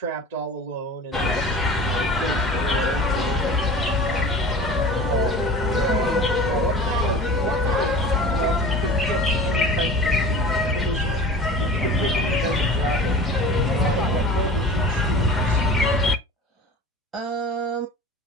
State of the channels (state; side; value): normal; both; correlation 0.38